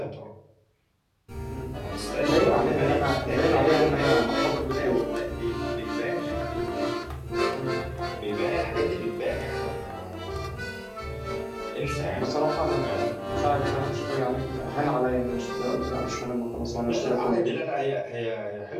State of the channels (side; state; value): both; identical; correlation 1.00